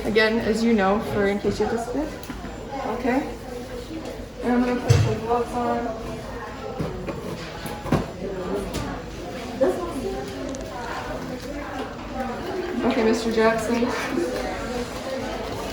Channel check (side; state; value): both; identical; correlation 1.00